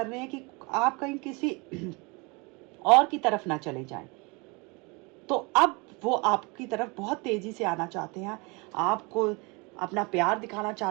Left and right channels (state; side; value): quieter; left; 28.3 dB